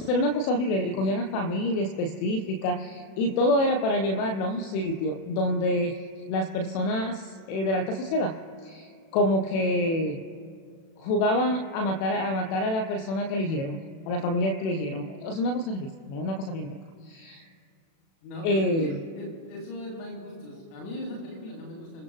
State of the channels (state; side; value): late; right; 36 ms